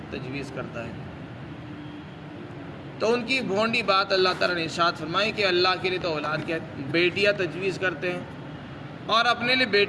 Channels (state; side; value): identical; both; correlation 1.00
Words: تجویز کرتا ہے۔ تو ان کی بھونڈی بات اللہ تعالیٰ نے ارشاد فرمائی کہ اللہ کے لیے تو اولاد کیا بیٹیاں تجویز کرتے ہیں اور اپنے لیے